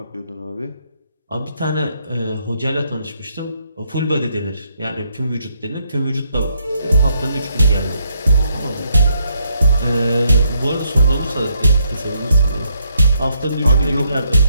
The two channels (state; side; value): inverted; both; correlation -0.74